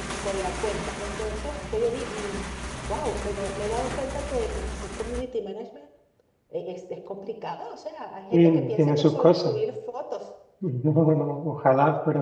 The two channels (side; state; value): both; identical; correlation 1.00